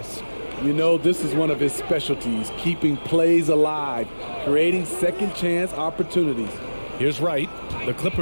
You know, this is one of his specialties, keeping plays alive, creating second chance opportunities. Here's Wright. The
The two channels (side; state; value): both; inverted; correlation -1.00